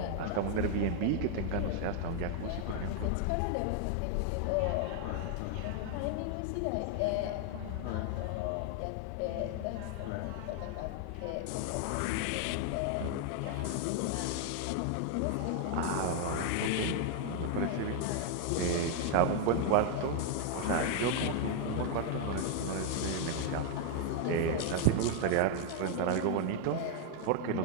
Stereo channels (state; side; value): different; both; correlation 0.00